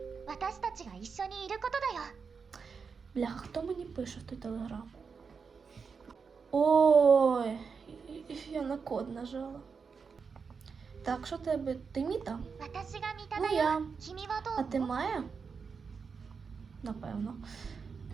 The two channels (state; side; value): quieter; left; 5.5 dB